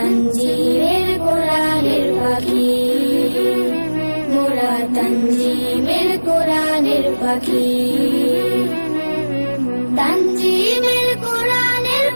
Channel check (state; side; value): inverted; both; correlation -1.00